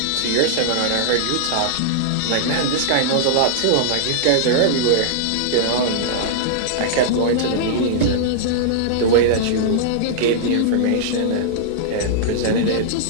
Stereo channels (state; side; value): different; both; correlation -0.01